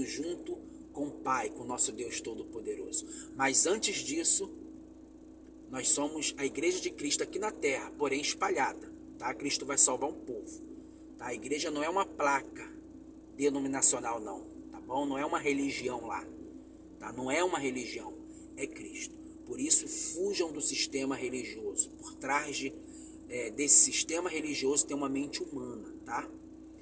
junto com o Pai, com o nosso Deus Todo-Poderoso. Mas antes disso, nós somos a igreja de Cristo aqui na terra, porém espalhada. Tá? Cristo vai salvar um povo. Tá? A igreja não é uma placa denominacional, não. Tá bom? Não é uma religião lá. Tá? Não é uma religião. É Cristo. Por isso, fujam do sistema religioso. Por trás desse sistema religioso tem uma mente humana. Tá?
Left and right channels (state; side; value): identical; both; correlation 1.00